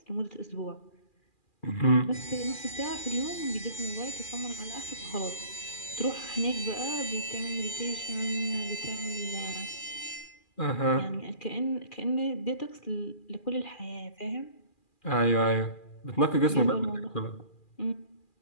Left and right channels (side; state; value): right; late; 2.4 ms